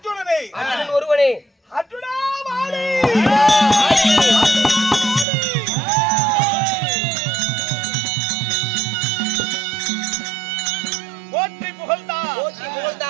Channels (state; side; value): drops out; left; at 5.2 s